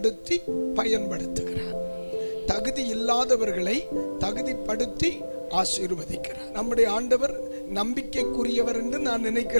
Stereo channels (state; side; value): inverted; both; correlation -1.00